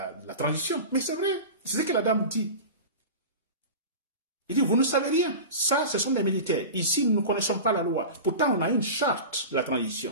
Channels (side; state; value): both; inverted; correlation -0.30